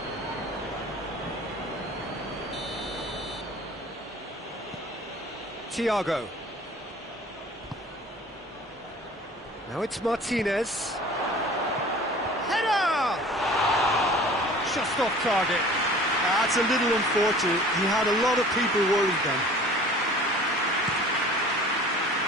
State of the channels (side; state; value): both; normal; correlation 0.46